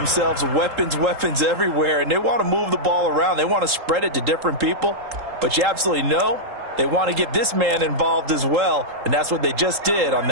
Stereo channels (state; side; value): late; left; 3.8 ms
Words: weapons, weapons everywhere, and they want to move the ball around. They want to spread it to different people, but you absolutely know they want to get this man involved as well, and that's what they just did on